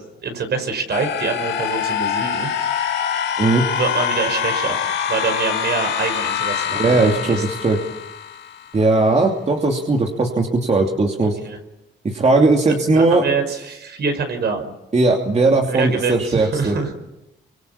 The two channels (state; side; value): normal; both; correlation 0.43